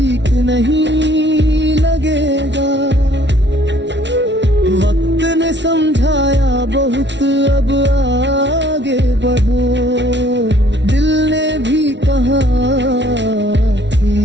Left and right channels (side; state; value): left; late; 0.51 ms